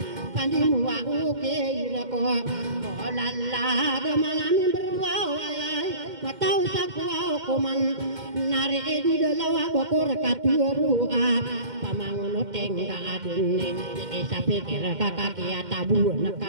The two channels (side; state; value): left; late; 2.1 ms